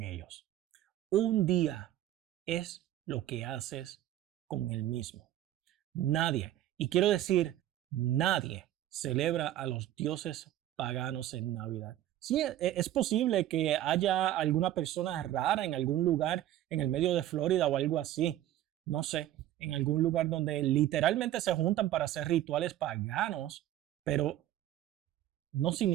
ellos. Un día es lo que haces con el mismo. Nadie, y quiero decir, nadie celebra a los dioses paganos en Navidad. Sí, es posible que haya alguna persona rara en algún lugar en el medio de Florida o algo así. No sé, en algún lugar donde literalmente se juntan para hacer rituales paganos, pero no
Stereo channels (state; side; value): quieter; left; 13.1 dB